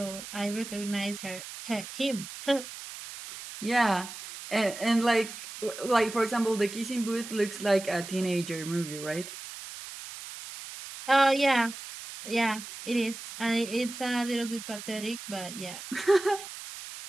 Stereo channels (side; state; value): right; noise; hiss, 11 dB below the sound